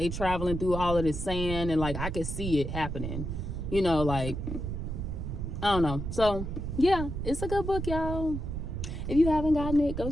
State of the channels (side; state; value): right; noise; rumble, 4 dB below the sound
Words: traveling through all of this sand, and like I could see it happening. You know, like, I don't know. So yeah, it's a good book, y'all. If you haven't gotten it, go